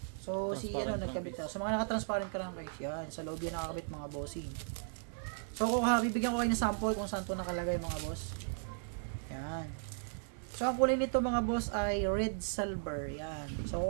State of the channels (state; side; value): silent; left; digital silence